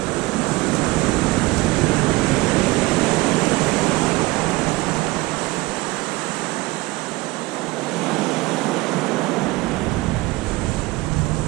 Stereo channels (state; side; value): quieter; left; 21.2 dB